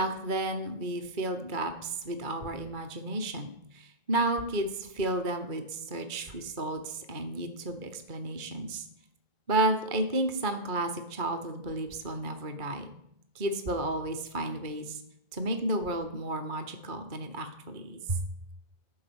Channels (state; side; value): late; left; 2.3 ms